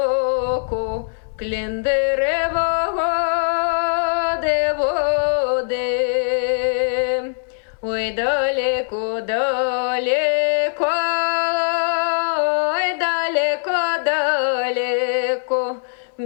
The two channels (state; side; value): silent; right; digital silence